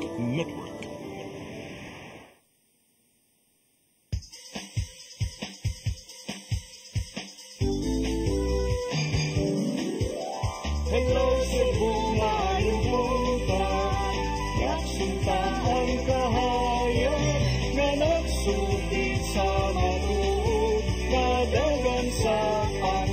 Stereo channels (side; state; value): both; identical; correlation 1.00